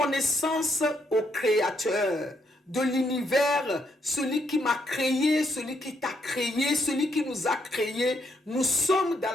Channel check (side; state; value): both; normal; correlation 0.75